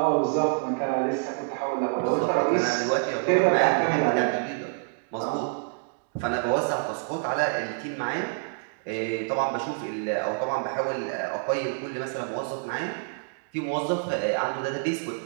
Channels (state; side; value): silent; left; digital silence